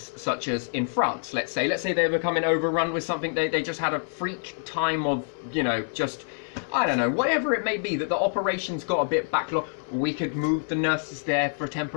such as in France, let's say they were becoming overrun with something, they just had a freak time of, you know, just, I don't know, whatever it may be, that the operations got a bit backlogged, we could move the nurses there for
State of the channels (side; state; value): right; silent; 56 dB below the other